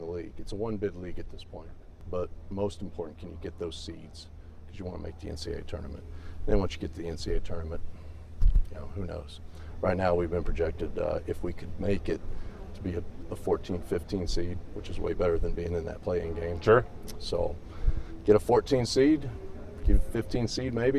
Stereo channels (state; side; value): identical; both; correlation 1.00